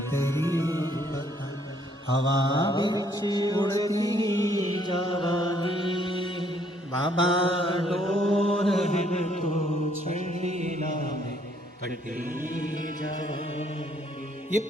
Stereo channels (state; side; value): normal; both; correlation 0.66